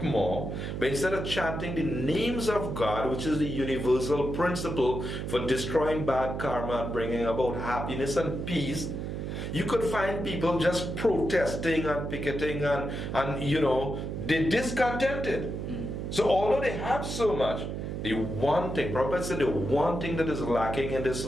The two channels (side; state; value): right; noise; hum, 4 dB below the sound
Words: more, but instead of chanting the names of God, which is the universal principle for destroying bad karma and bringing about happiness and peace, you could find people just protesting and picketing and they're discontented. So although they have so much, the one thing, Prabhupada said, the one thing that is lacking in this